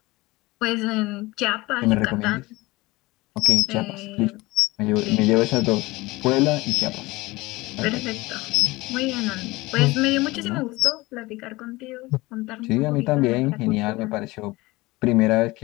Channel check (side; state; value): right; quieter; 21.2 dB